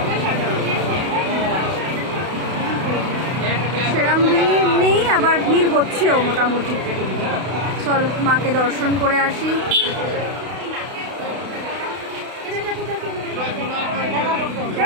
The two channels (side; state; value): left; late; 32 ms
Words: সেরম ভিড় নেই, আবার ভিড় হচ্ছেও মোটামুটি। চলো মাকে দর্শন করে আসি।